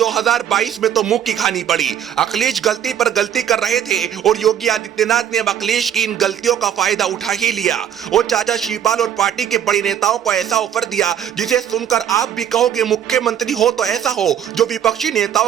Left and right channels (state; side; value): quieter; left; 9.5 dB